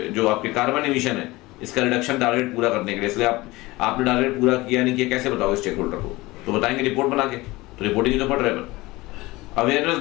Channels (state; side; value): quieter; right; 20.6 dB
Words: जो आपके कार्बन एमिशन है इसका रिडक्शन टारगेट पूरा करने के लिए। इसलिए आपने टारगेट पूरा किया नहीं किया, कैसे बताओगे स्टेक होल्डर को? तो बताएंगे रिपोर्ट बना के। तो रिपोर्टिंग तो बढ़ रहा है, पर अवेयरनेस